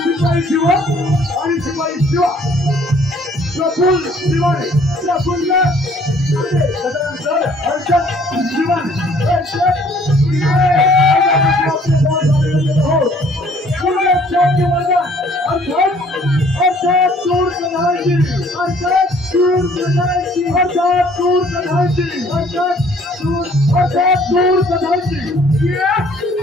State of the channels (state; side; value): normal; both; correlation 0.59